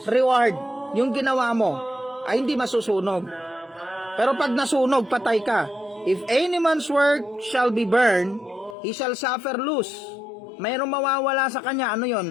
reward, yung ginawa mo ay hindi masusunog. Pero pag nasunog, patay ka. If any man's work shall be burned, he shall suffer loss. Mayroong mawawala sa kanya, ano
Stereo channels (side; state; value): right; drops out; at 8.8 s